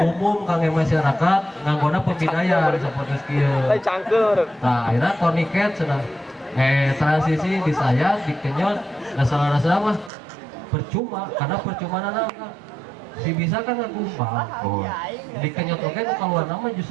kangge masyarakat nganggona pembidayan seperti kieu. Cangkeur. Nah, akhirnya tourniquet cenah. Transisi disayat, dikenyot, rasa mah percuma karena percuma nana si bisa kan ngagumpal. Oh. Dikenyot oge nu kaluar nama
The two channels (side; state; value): left; drops out; at 10.1 s